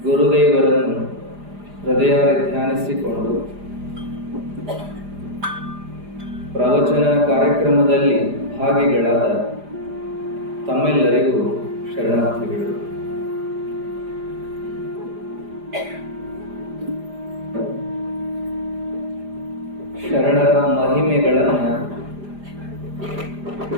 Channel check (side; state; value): left; late; 4.9 ms